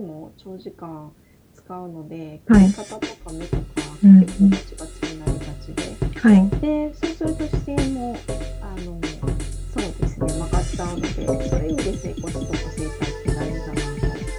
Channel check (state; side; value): identical; both; correlation 1.00